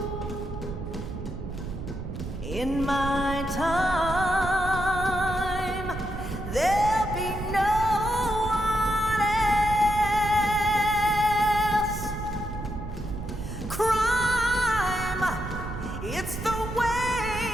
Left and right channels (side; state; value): right; noise; rumble, 8 dB below the sound